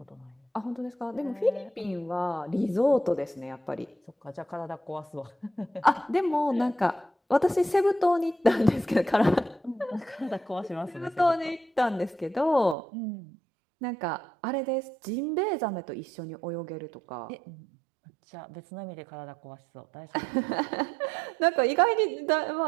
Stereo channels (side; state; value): left; drops out; at 12.8 s